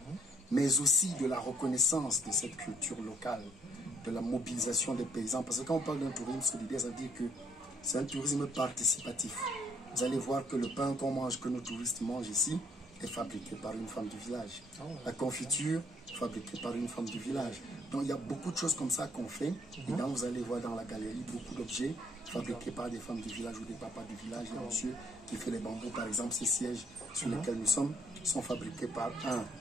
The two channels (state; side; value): normal; both; correlation 0.65